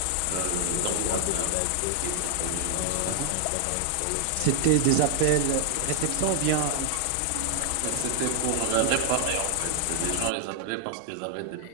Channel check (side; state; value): both; different; correlation 0.00